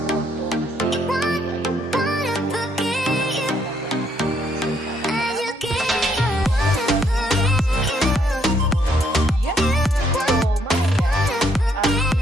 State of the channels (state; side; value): normal; both; correlation 0.71